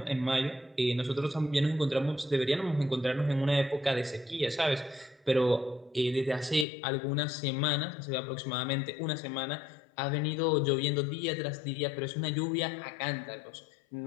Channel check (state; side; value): drops out; right; at 6.7 s